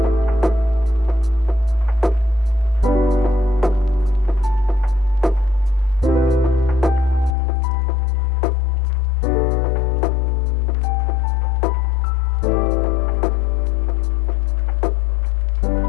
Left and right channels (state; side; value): drops out; right; at 7.3 s